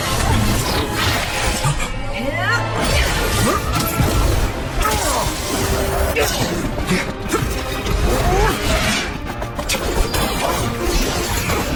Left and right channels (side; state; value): both; identical; correlation 1.00